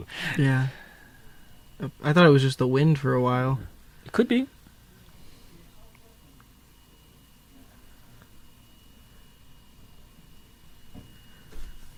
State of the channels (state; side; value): identical; both; correlation 1.00